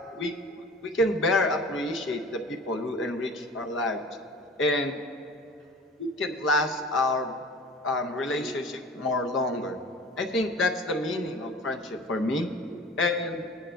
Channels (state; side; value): normal; both; correlation 0.41